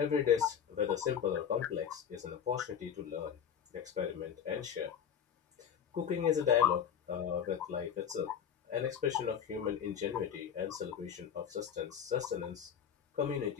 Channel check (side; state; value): right; quieter; 8.4 dB